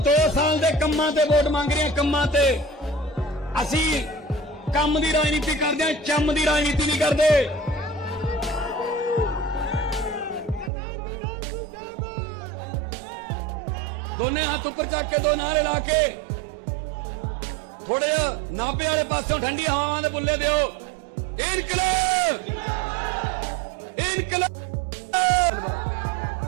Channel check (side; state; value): left; drops out; at 10.7 s